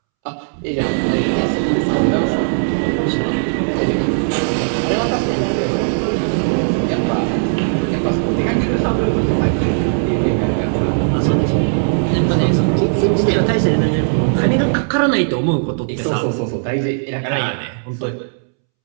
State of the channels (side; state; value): left; silent; 68 dB below the other